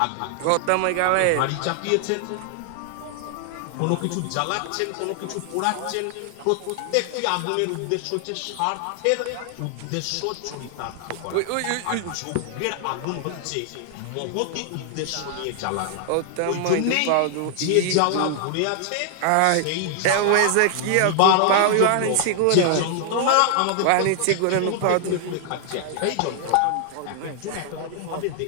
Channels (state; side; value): different; both; correlation 0.00